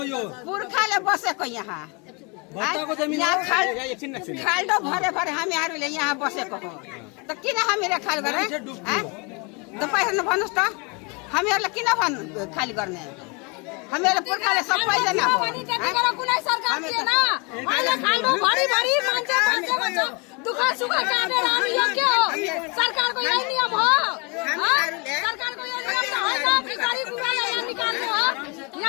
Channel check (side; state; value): right; quieter; 30.8 dB